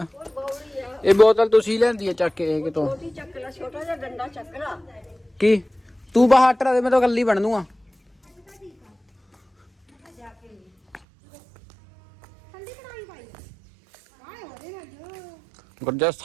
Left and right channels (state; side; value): drops out; left; at 11.0 s